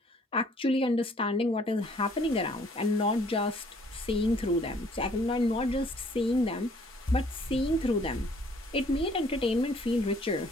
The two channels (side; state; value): both; normal; correlation 0.60